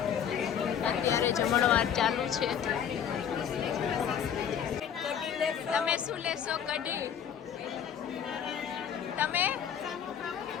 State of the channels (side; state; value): right; quieter; 8.5 dB